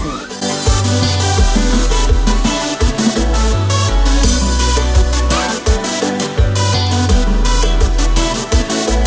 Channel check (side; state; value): both; identical; correlation 1.00